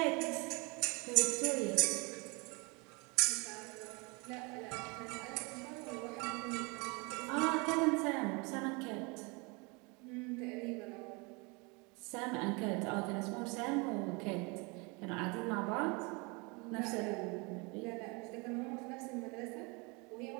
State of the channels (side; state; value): left; quieter; 29.1 dB